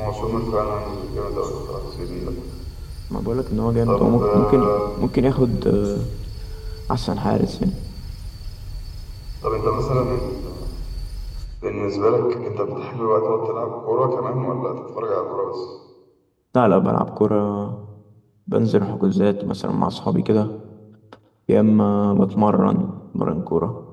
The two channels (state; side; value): identical; both; correlation 1.00